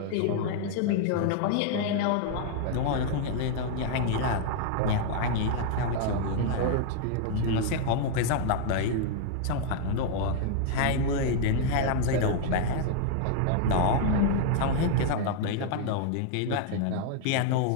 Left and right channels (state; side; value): different; both; correlation 0.00